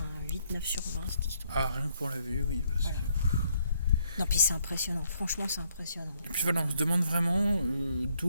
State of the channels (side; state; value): both; inverted; correlation -0.71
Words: 8-9 sur 20 cette histoire. Ah, rien que pour la vue, oui, parce que... Non, puis c'est impressionnant, franchement c'est impressionnant. Et puis on se demande vraiment